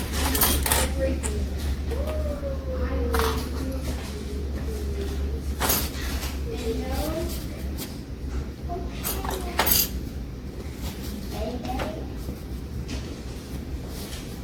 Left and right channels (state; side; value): identical; both; correlation 1.00